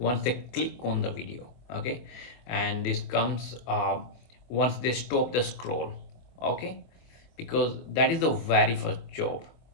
they click on the video. Okay, and this comes once they stop the scroll. Okay, because that is the very first job.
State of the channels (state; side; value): late; right; 24 ms